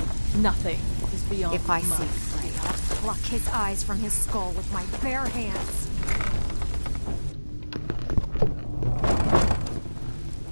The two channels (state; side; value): inverted; both; correlation -1.00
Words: Nothing is beyond If I see my... Frey, I'll pluck his eyes from his skull with my bare hands.